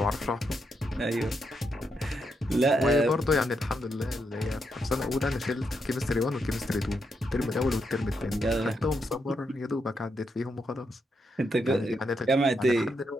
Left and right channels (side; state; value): both; normal; correlation 0.81